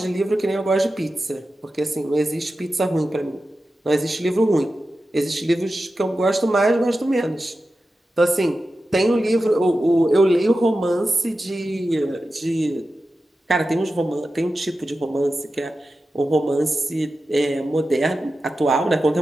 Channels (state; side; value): normal; both; correlation 0.92